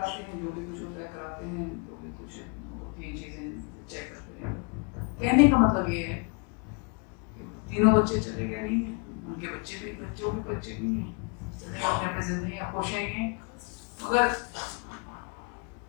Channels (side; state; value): right; quieter; 34.9 dB